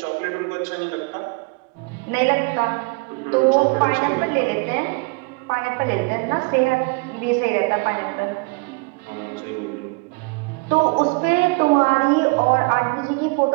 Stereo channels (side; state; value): left; quieter; 29.2 dB